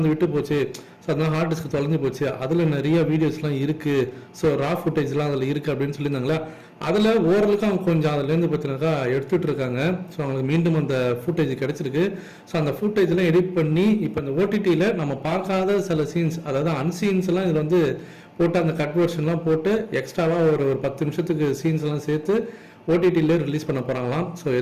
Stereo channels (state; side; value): identical; both; correlation 1.00